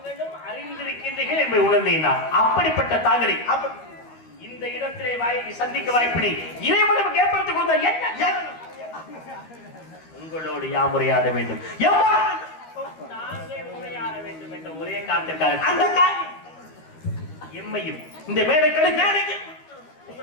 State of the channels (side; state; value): right; late; 13 ms